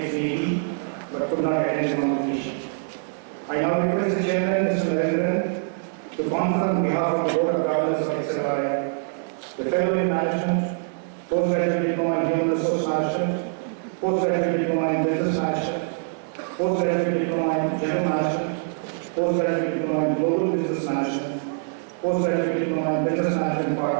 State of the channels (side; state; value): left; silent; digital silence